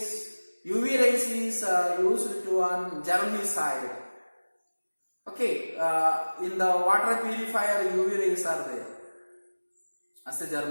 UV rays is used to on germicide. Okay, in the water purifier UV rays are there as a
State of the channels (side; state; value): both; inverted; correlation -1.00